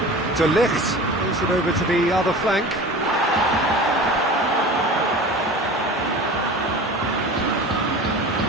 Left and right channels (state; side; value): normal; both; correlation 0.36